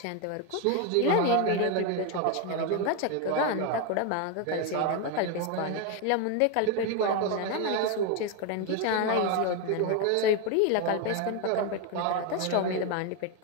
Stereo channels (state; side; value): different; both; correlation 0.01